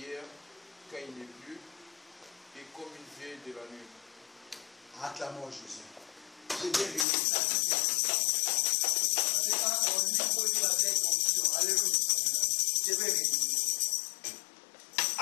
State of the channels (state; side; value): drops out; right; at 7.1 s